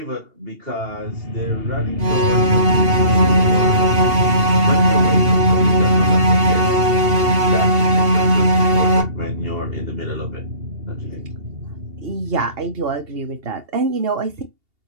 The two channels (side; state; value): left; late; 2.8 ms